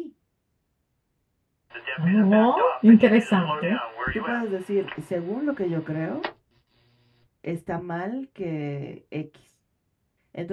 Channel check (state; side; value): identical; both; correlation 1.00